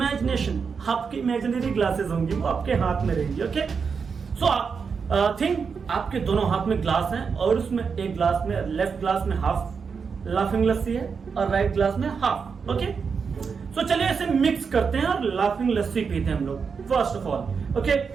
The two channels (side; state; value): left; quieter; 5.7 dB